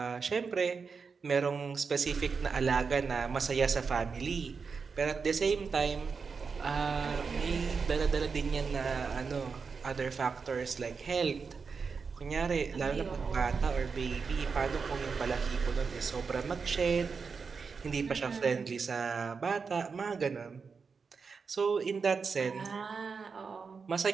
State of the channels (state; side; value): quieter; left; 5.3 dB